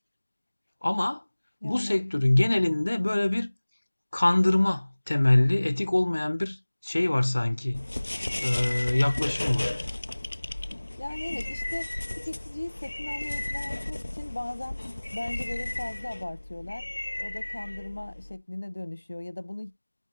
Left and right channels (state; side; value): inverted; both; correlation -1.00